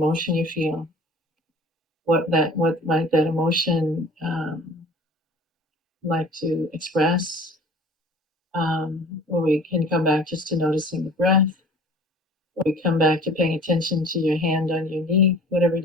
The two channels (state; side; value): normal; both; correlation 0.46